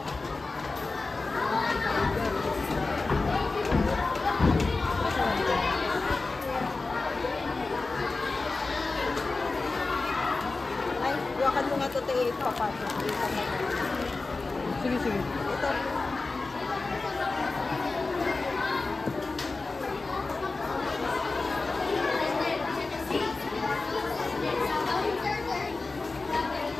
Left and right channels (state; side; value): quieter; right; 3.6 dB